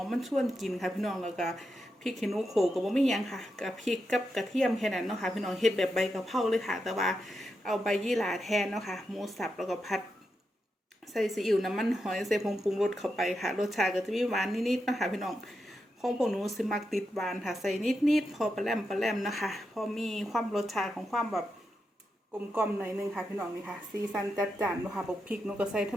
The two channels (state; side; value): normal; both; correlation 0.86